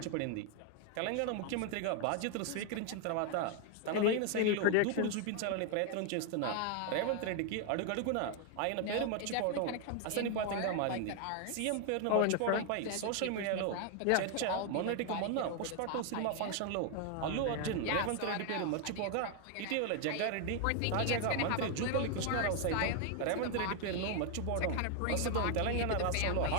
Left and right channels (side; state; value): both; different; correlation 0.00